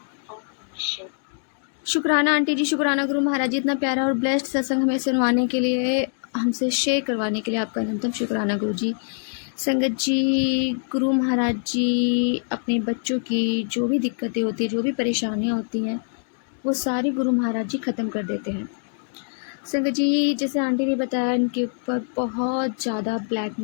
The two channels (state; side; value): silent; right; digital silence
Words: ओम नमः शिवाय। शुक्राना आंटी जी, शुक्राना गुरु महाराज जी, इतना प्यारा और ब्लेस्ड सत्संग हमें सुनवाने के लिए, हमसे शेयर करवाने के लिए आपका अनंतम शुक्राना गुरु जी। संगत जी, गुरु महाराज जी अपने बच्चों की जो भी दिक्कतें होती हैं, जो भी परेशानियां होती हैं, वो सारी गुरु महाराज जी ख़त्म कर देते हैं। संगत जी, जैसे आंटी ने बताया, उनके ऊपर बहुत ज़्यादा ब्लैक